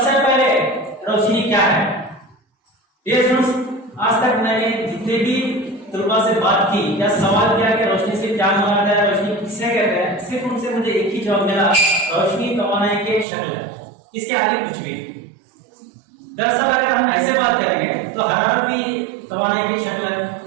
पहले रोशनी क्या है? ये स्टूडेंट्स, आज तक मैंने जितने भी तलबा से बात की या सवाल किया कि रोशनी से क्या मुराद है, रोशनी किसे कहते हैं, सिर्फ उनसे मुझे एक ही जवाब मिला, रोशनी तवानाई की एक शक्ल है, इसके आगे कुछ भी। दरअसल अगर हम ऐसे बात करेंगे तो हरारत भी तवानाई की शक्ल है,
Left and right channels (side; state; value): left; drops out; at 13.2 s